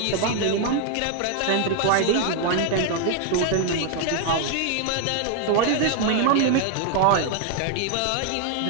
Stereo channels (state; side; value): different; both; correlation 0.00